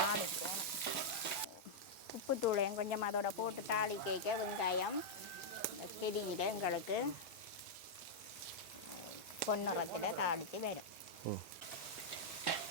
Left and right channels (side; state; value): both; normal; correlation -0.06